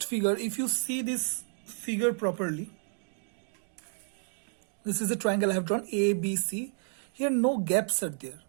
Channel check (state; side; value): silent; left; 57 dB below the other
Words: figure? If you see this figure properly, this is a triangle I have drawn, A, B, C. Here no gaps are there.